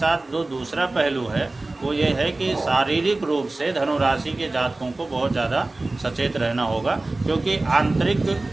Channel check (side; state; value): left; quieter; 3.0 dB